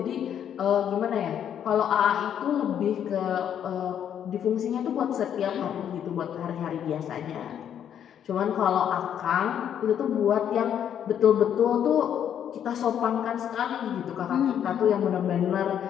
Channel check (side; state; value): right; quieter; 9.3 dB